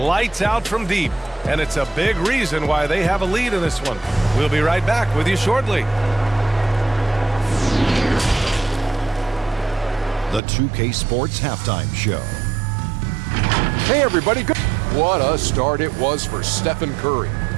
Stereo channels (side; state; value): left; drops out; at 10.4 s